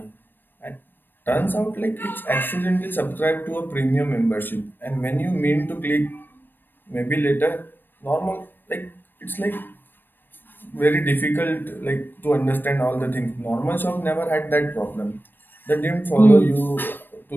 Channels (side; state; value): right; late; 0.094 ms